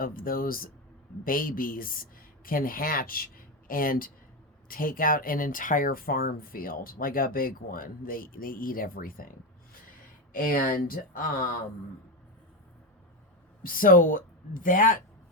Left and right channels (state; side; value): normal; both; correlation 0.13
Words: those babies can hatch and take out an entire farm field, like a big one. They eat everything. And so that